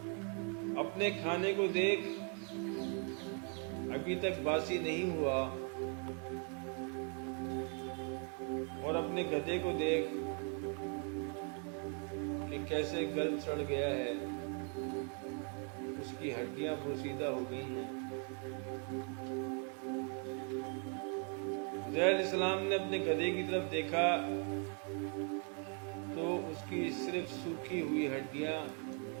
اپنے کھانے کو دیکھ، ابھی تک باسی نہیں ہوا، اور اپنے گدھے کو دیکھ کہ کیسے گل سڑ گیا ہے، اس کی ہڈیاں بوسیدہ ہو گئی ہیں۔ عزیر علیہ السلام نے اپنے گدھے کی طرف دیکھا تو اس کی صرف سوکھی ہوئی ہڈیاں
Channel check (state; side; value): quieter; left; 39.7 dB